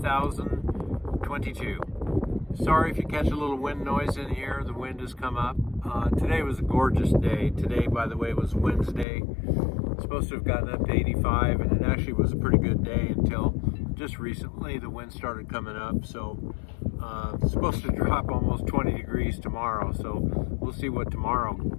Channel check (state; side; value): drops out; right; at 9.1 s